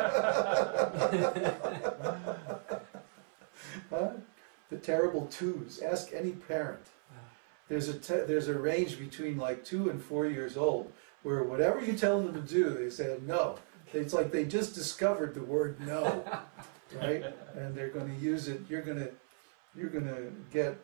Huh? The terrible twos. Ask any parent. There's a range between like 2 and 4 years old where whatever you tell them to do, they say no. It's like they just discovered the word no, right? And they're going to use it. You're going to get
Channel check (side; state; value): left; silent; 54 dB below the other